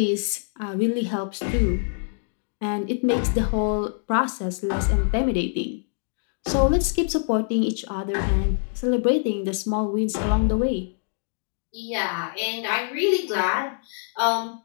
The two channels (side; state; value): right; silent; digital silence